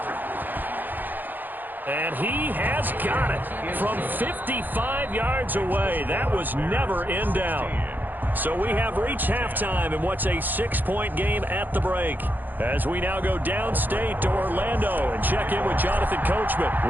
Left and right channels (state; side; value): late; left; 0.087 ms